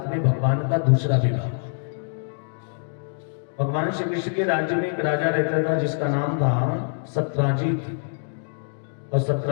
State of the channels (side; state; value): right; silent; digital silence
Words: में भगवान का दूसरा विवाह। भगवान श्री कृष्ण के राज्य में एक राजा रहता था जिसका नाम था सत्राजित। और